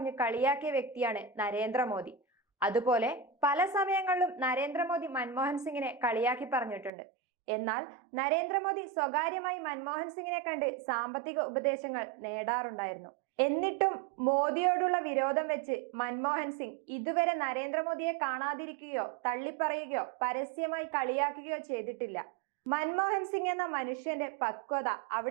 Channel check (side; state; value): left; drops out; at 6.9 s